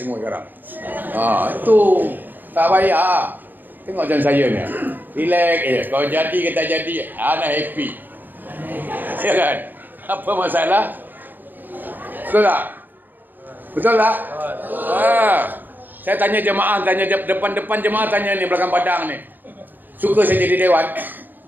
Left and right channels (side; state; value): left; late; 0.088 ms